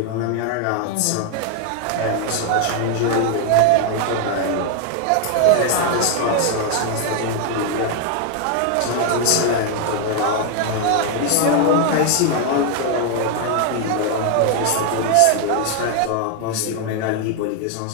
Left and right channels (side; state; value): both; different; correlation 0.01